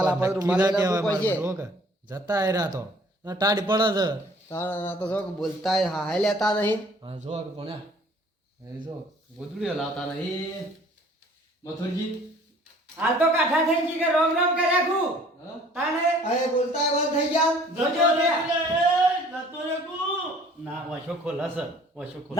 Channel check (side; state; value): both; normal; correlation 0.54